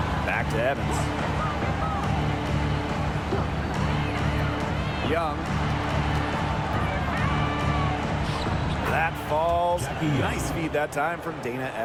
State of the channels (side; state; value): both; identical; correlation 1.00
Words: Back to Evans. Young. That falls. Nice feed that time from Dana